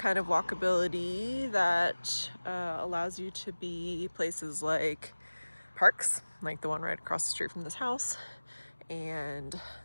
of walkability that allows you to be places like parks, like the one right across the street from this house, and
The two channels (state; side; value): inverted; both; correlation -1.00